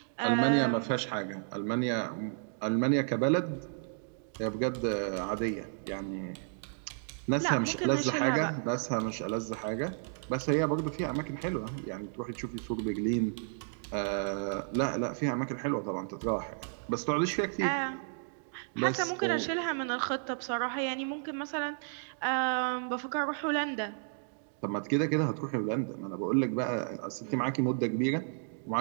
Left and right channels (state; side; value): silent; left; digital silence